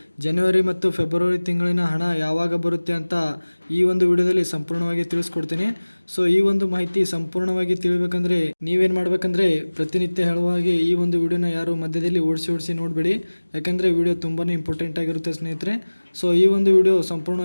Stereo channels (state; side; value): inverted; both; correlation -1.00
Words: ಜನವರಿ ಮತ್ತು ಫೆಬ್ರವರಿ ತಿಂಗಳಿನ ಹಣ ಯಾವಾಗ ಬರುತ್ತೆ ಅಂತ ಈ ಒಂದು ವಿಡಿಯೋದಲ್ಲಿ ಸಂಪೂರ್ಣವಾಗಿ ತಿಳಿಸ್ಕೊಡ್ತೀನಿ. ಈ ಒಂದು ಮಾಹಿತಿ ಸಂಪೂರ್ಣವಾಗಿ ತಿಳಿಬೇಕಂದ್ರೆ ನೀವೇನು ಮಾಡ್ಬೇಕಂದ್ರೆ ಪ್ರತಿನಿತ್ಯ ಹೇಳುವ ಹಾಗೆ ಈ ಒಂದು ವಿಡಿಯೋನ ಯಾರು ಮಧ್ಯದಲ್ಲಿ ಓಡಿಸಿ ನೋಡಬೇಡಿ, ಯಾಕಂದರೆ ವಿಡಿಯೋ ತುಂಬಾ ಇಂಪಾರ್ಟೆಂಟ್ ಆಗಿರುತ್ತೆ ಸ್ನೇಹಿತರೆ. ಈ ಒಂದು ವಿಡಿಯೋ